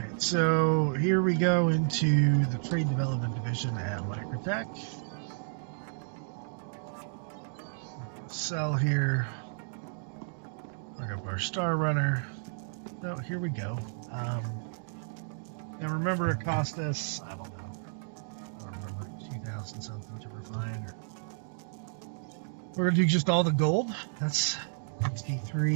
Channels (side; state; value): left; silent; digital silence